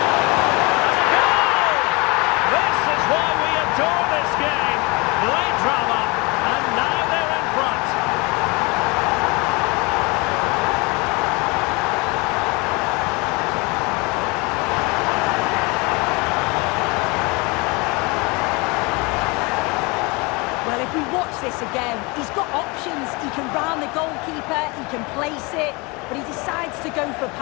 This is why we adore this game. Late drama, and now they're in front. Well, if we watch this again, he's got options. He can round the goalkeeper, he can place it, but he decides to go for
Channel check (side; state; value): right; quieter; 27.2 dB